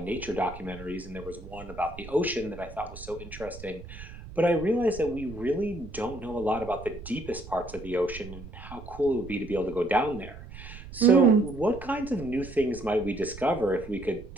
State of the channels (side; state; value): right; noise; rumble, 14 dB below the sound